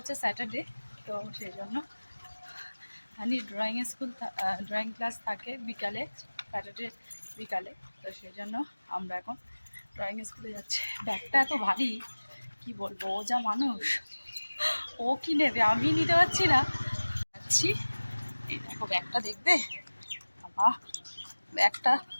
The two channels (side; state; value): both; inverted; correlation -1.00